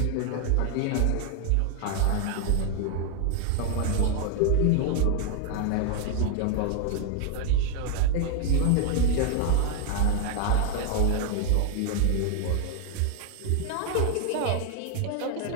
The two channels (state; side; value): different; both; correlation 0.00